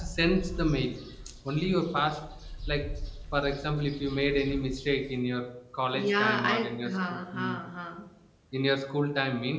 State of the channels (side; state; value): both; identical; correlation 1.00